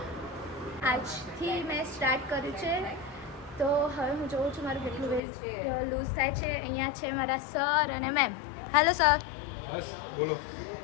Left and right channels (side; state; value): right; drops out; at 5.2 s